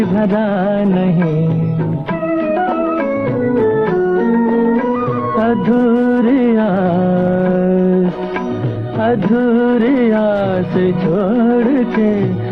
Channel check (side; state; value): both; identical; correlation 1.00